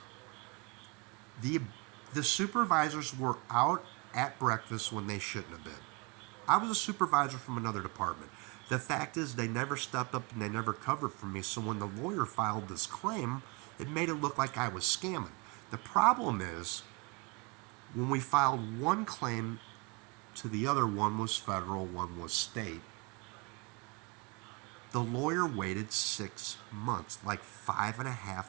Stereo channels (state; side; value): quieter; left; 29.7 dB